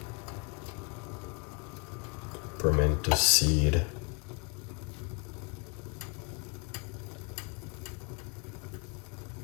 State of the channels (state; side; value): quieter; right; 32.5 dB